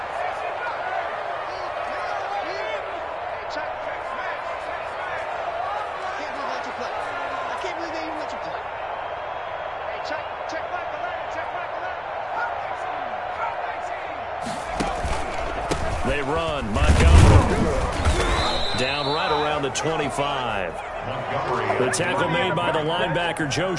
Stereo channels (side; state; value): both; identical; correlation 1.00